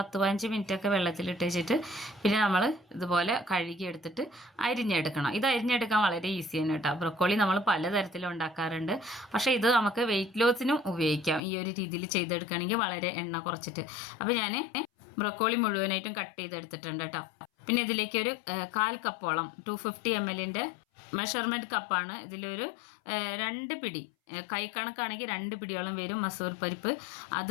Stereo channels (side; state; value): right; drops out; at 11.4 s